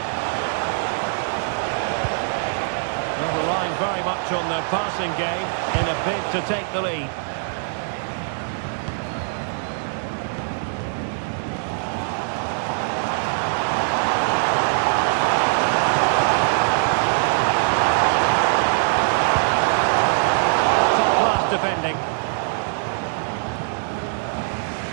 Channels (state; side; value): silent; left; digital silence